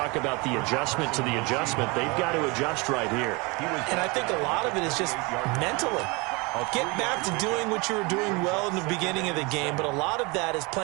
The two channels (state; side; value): quieter; left; 27.1 dB